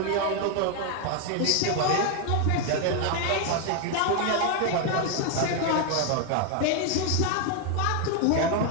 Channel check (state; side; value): different; both; correlation 0.01